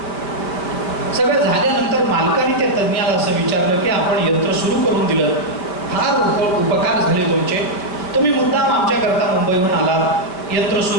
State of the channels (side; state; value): right; late; 5.2 ms